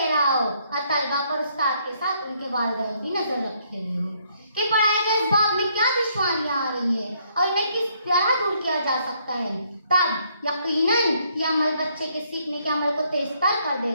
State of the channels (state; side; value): inverted; both; correlation -0.69